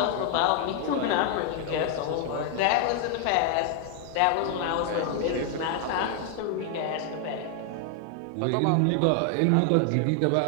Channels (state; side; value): different; both; correlation 0.00